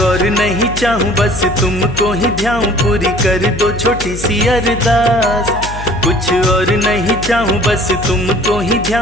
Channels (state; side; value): noise; left; hum, 10 dB below the sound